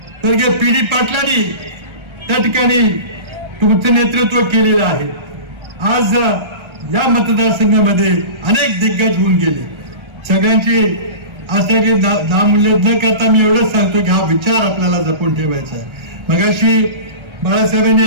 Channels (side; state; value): left; late; 1.3 ms